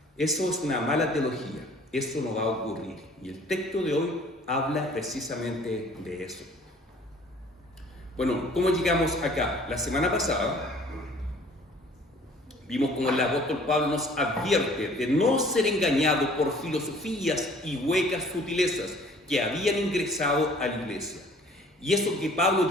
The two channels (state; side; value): normal; both; correlation 0.53